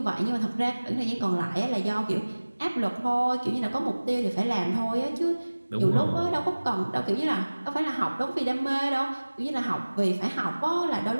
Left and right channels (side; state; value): both; inverted; correlation -1.00